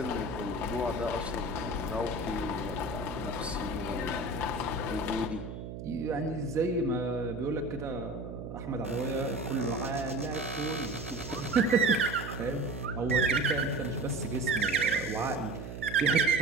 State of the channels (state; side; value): noise; right; hum, 8 dB below the sound